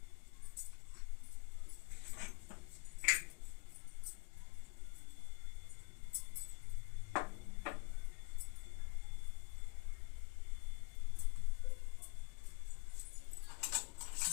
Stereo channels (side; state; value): right; quieter; 31.3 dB